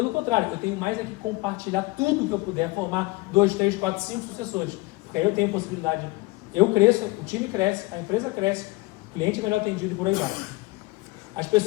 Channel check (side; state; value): right; quieter; 23.0 dB